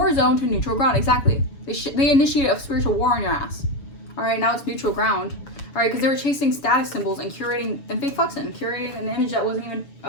zone to neutral ground. Exactly. They initiated a spiritual war on your ass. All right, now it's neutral ground. All right, because they were chasing status symbols and curating and fake flexing, curating an image that wasn't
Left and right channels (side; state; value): right; late; 7.0 ms